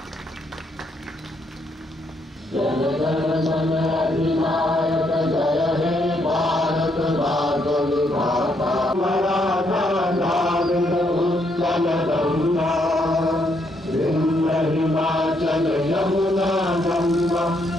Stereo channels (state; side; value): normal; both; correlation 0.74